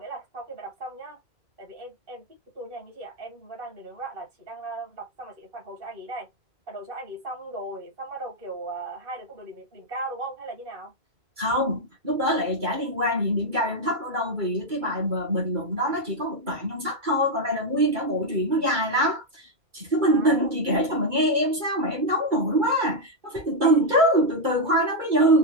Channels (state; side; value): late; left; 2.3 ms